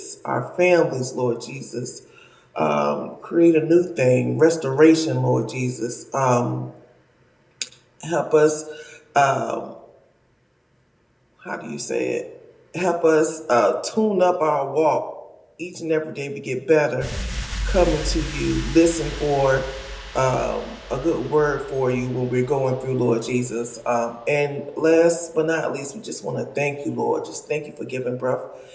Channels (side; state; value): both; identical; correlation 1.00